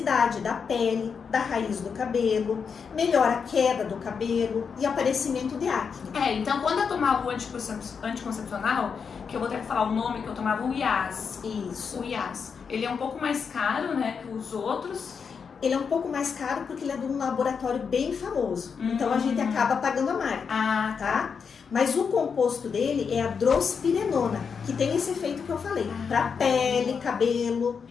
da pele, da raiz do cabelo, melhora a queda do cabelo e aparecimento de acne. Então quando eu tomava o anticoncepcional, que eu vou ter que falar o nome, que eu tomava o IAS. Isso. O IAS. Ele é um pouco mais caro, né, que os outros. Ele é um pouco mais caro porque ele é de um laboratório bem famoso. Então a gente acaba pagando a marca. Ah, tá? Mas o composto dele é a drospirenona, que tem esse efeito que eu falei, para pele, cabelo.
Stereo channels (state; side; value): quieter; right; 6.1 dB